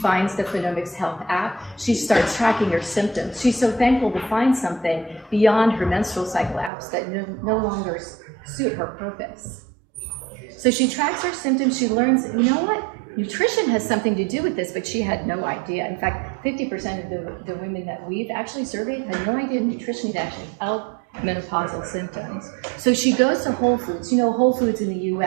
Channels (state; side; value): drops out; left; at 6.7 s